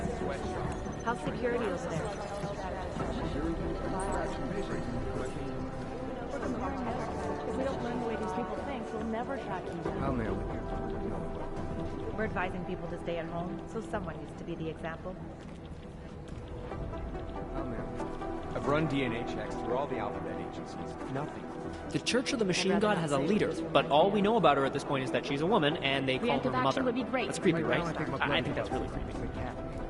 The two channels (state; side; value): identical; both; correlation 1.00